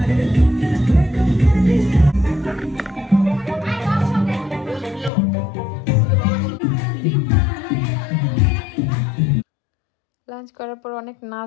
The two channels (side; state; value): right; drops out; at 5.1 s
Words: লাঞ্চ করার পর অনেক